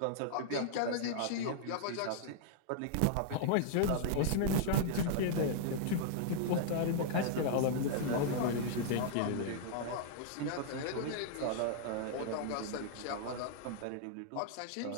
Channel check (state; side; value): different; both; correlation -0.01